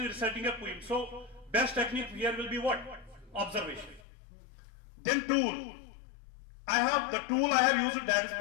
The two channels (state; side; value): drops out; right; at 4.0 s